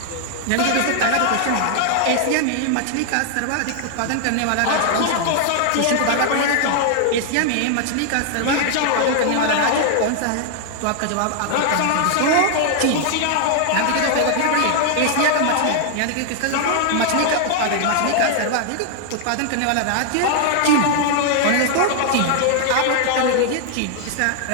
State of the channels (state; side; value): different; both; correlation 0.00